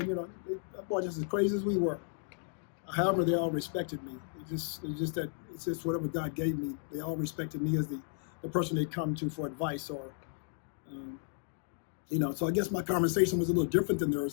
boy, just as crazy as we were. However, they all respected me. It's just whatever God gave me. They all respected me as the person they come to for advice or, So I guess my conversation was a little different than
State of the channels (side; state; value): right; silent; 55 dB below the other